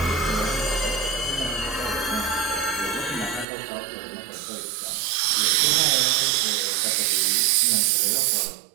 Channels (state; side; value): drops out; left; at 3.5 s